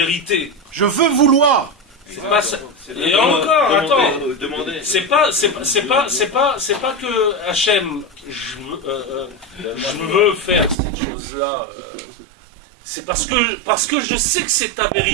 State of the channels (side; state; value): left; drops out; at 10.8 s